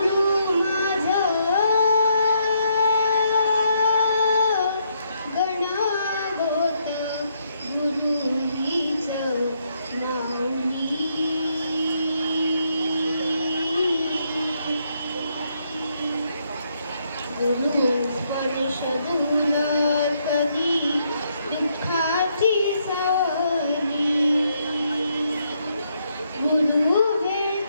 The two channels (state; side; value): inverted; both; correlation -0.75